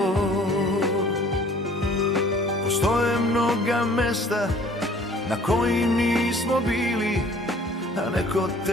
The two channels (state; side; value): normal; both; correlation 0.53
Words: Postoje mnoga mesta na kojim nismo bili, a neko